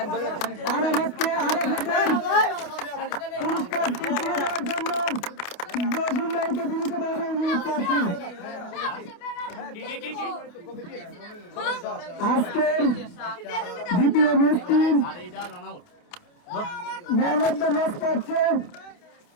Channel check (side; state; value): right; late; 29 ms